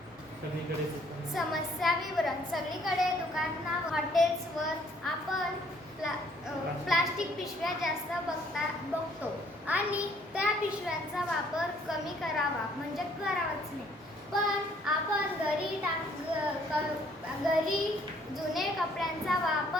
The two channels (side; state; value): both; normal; correlation 0.63